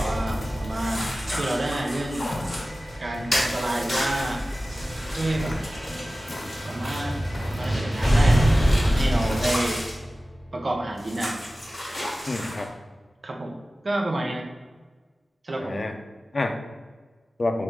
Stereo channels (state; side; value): normal; both; correlation 0.96